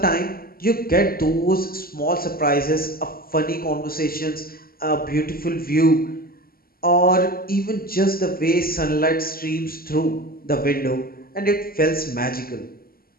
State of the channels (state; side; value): late; right; 0.43 ms